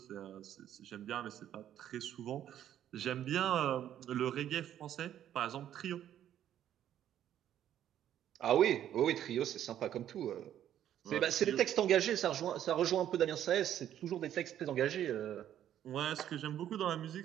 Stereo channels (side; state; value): left; quieter; 11.0 dB